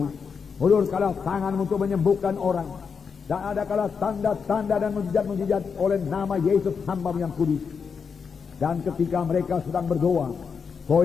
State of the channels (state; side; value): quieter; right; 6.0 dB